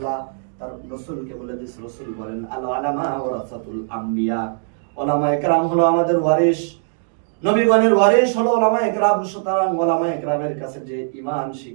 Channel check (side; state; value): left; silent; digital silence